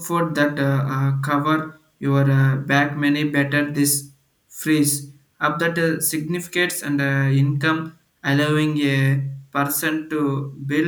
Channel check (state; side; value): identical; both; correlation 1.00